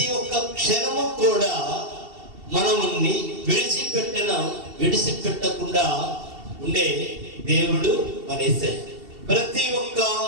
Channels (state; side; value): late; left; 2.7 ms